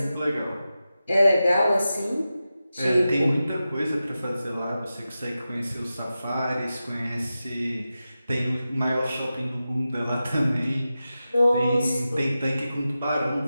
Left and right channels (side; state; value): both; inverted; correlation -0.93